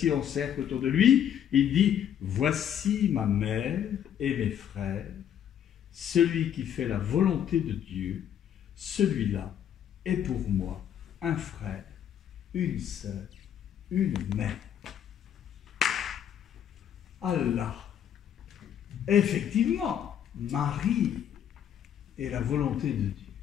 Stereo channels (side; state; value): right; quieter; 9.6 dB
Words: en cercle autour de lui, il dit, voici ma mère et mes frères. Celui qui fait la volonté de Dieu, celui-là est pour moi un frère, une sœur, une mère. Allah. Effectivement, Marie est la volonté de Dieu.